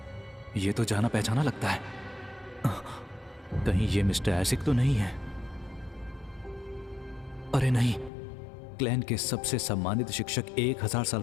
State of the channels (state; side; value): drops out; right; at 8.1 s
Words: ये तो जाना पहचाना लगता है। कहीं ये मिस्टर एसिक तो नहीं है? अरे नहीं, क्लैन के सबसे सम्मानित शिक्षक 1000 साल